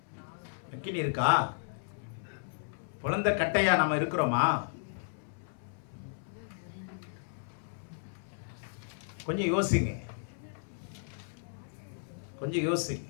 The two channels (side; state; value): right; silent; 55 dB below the other